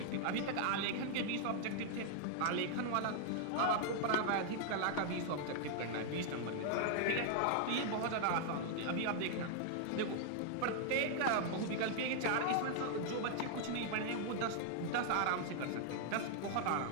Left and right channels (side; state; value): both; different; correlation 0.00